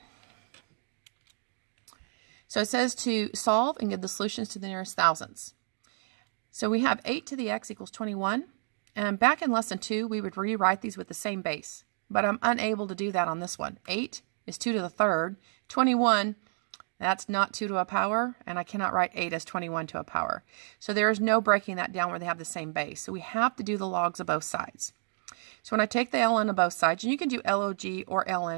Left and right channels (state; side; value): silent; left; digital silence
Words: So it says to solve and give the solutions to the nearest thousands. So we have 8 to the x equals 21. And back in lesson 2, we would rewrite these with the same base. But I'm unable to do that on this one. 8 is 2 to the third. 21, that's not 2 to a power. And I cannot write 8 as 21 to a power. So there is no breaking that down where they have the same base. So we have to do the logs of both sides. So when I take the ln of both sides, and you can do log or